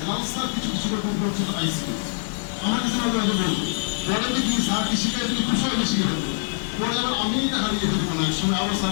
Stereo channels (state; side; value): silent; right; digital silence